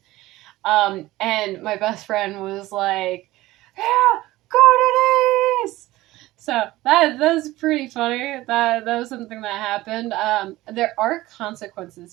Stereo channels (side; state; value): left; quieter; 17.6 dB